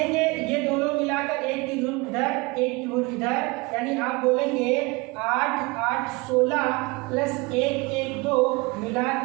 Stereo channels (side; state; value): left; quieter; 25.4 dB